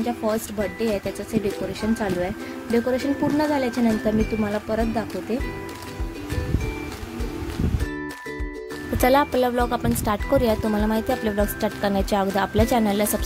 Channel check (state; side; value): identical; both; correlation 1.00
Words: फर्स्ट बर्थडे आहे, त्याचंच हे डेकोरेशन चालू आहे. डेकोरेशन पूर्ण झाल्याच्या नंतर मी तुम्हाला परत दाखवते. तर चला आपला व्लॉग आपण स्टार्ट करूया. तुम्हाला माहिती आहे आपले व्लॉग स्टार्ट करण्याच्या अगोदर आपल्या चॅनलला